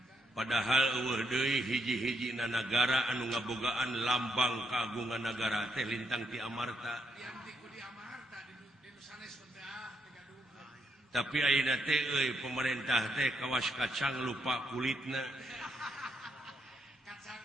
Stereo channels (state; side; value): normal; both; correlation 0.77